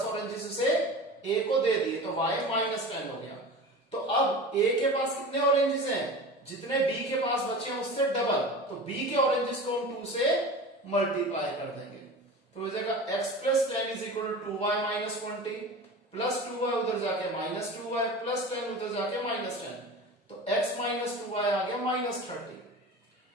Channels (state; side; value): normal; both; correlation 0.33